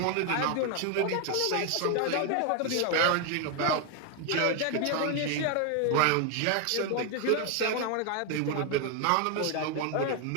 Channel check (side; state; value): both; different; correlation 0.01